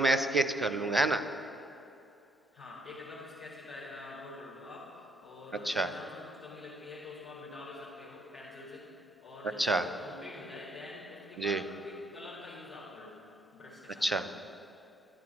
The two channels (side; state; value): both; normal; correlation 0.69